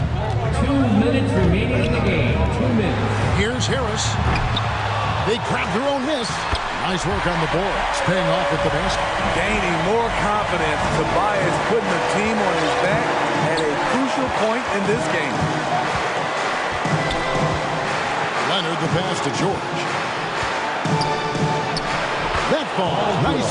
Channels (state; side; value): identical; both; correlation 1.00